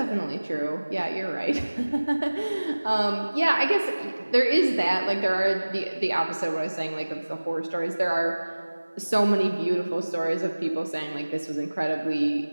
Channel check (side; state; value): both; inverted; correlation -1.00